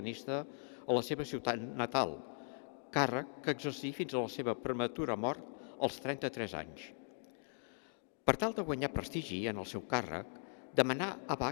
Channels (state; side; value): silent; right; digital silence